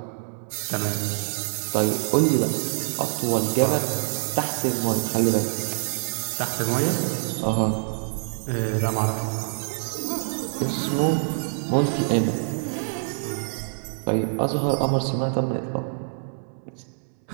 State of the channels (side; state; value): left; silent; 61 dB below the other